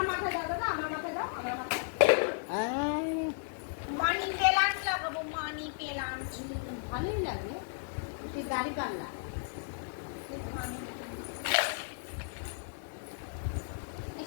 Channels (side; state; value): right; silent; 55 dB below the other